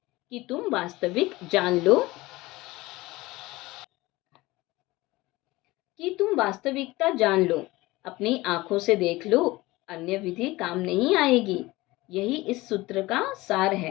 कि तुम वास्तविक जान लो कि तुम वास्तविकता जान लो, अपनी आंखों से देख लो, अन्य विधि काम नहीं आएगी। यही इस सूत्र का सार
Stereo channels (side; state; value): right; quieter; 20.0 dB